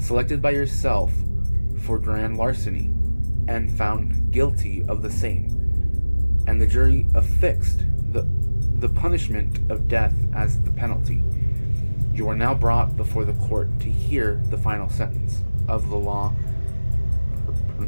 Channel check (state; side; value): inverted; both; correlation -1.00